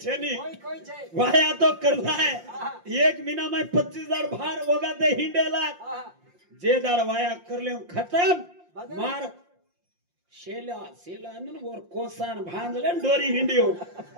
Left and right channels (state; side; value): late; left; 5.7 ms